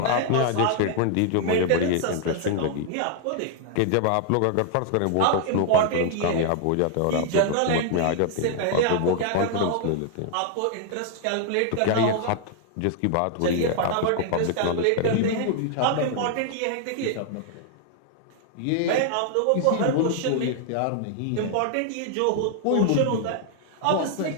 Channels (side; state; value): both; different; correlation 0.00